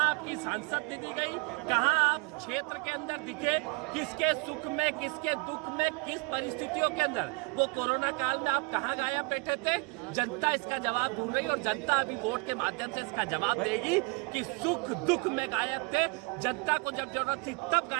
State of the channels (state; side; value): quieter; left; 28.9 dB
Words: आपकी सांसद निधि गई, कहाँ आप क्षेत्र के अंदर दिखे, किसके सुख में, किसके दुख में, किस परिस्थितियों के अंदर वो कोरोना काल में आप कहाँ गायब बैठे थे। जनता इसका जवाब ढूंढ रही और जनता अभी वोट के माध्यम से इसका जवाब देगी कि सुख दुख में गायब थे, जनता को जब जरूरत थी तब